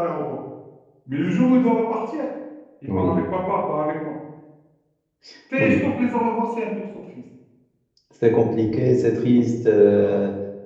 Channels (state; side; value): identical; both; correlation 1.00